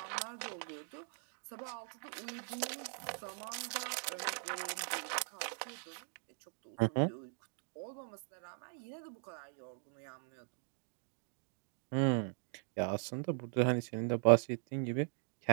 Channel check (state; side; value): silent; left; 51 dB below the other